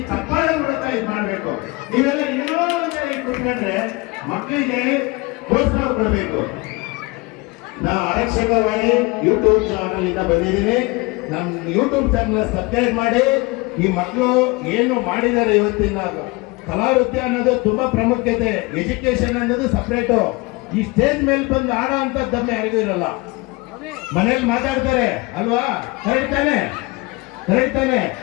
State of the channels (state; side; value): quieter; right; 24.8 dB